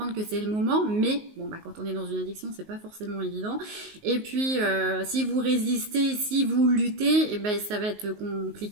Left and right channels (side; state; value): left; late; 19 ms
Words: que c'est le moment, mais bon quand on est dans une addiction c'est pas forcément évident. Et puis si vous résistez, si vous luttez, et ça va être